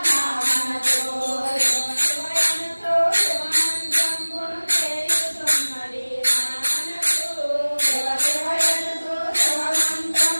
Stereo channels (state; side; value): inverted; both; correlation -1.00